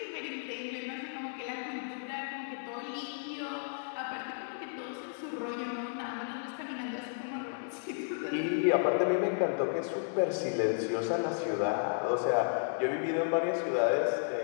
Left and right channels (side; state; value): right; silent; digital silence